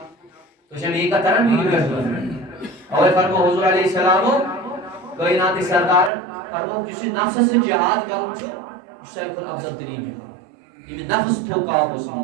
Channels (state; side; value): drops out; left; at 6.1 s